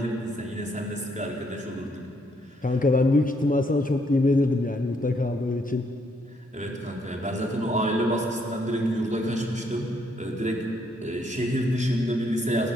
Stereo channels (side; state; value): both; normal; correlation 0.72